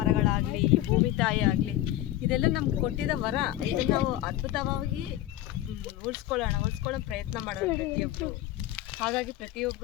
ಈ ಭೂಮಿ ತಾಯಿ ಆಗಲಿ, ಇದೆಲ್ಲ ನಮ್ಗೆ ಕೊಟ್ಟಿದ್ದ ವರ. ಇದನ್ನು ನಾವು ಅದ್ಭುತವಾಗಿ ಉಳಿಸ್ಕೊಳ್ಳೋ ಪ್ರಯತ್ನ ಮಾಡೋಣ ಪ್ರತಿಯೊಬ್ಬರು. ಹಾಗಾಗಿ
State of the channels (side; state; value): right; quieter; 14.2 dB